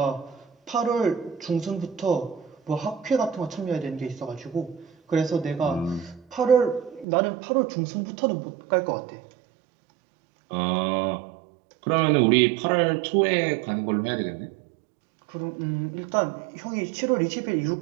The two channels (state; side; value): drops out; left; at 7.1 s